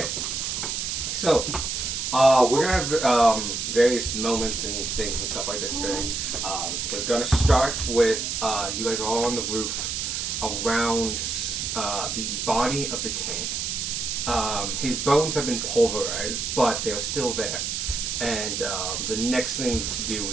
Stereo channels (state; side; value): noise; right; hiss, 2 dB below the sound